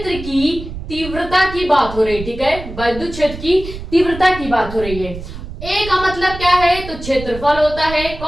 की तीव्रता की बात हो रही है। ठीक है, वैद्युत क्षेत्र की तीव्रता की बात हो रही है। ए का मतलब क्या है, तो क्षेत्रफल होता है।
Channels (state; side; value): noise; right; rumble, 11 dB below the sound